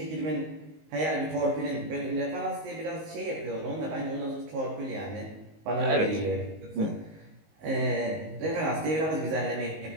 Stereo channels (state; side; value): late; left; 19 ms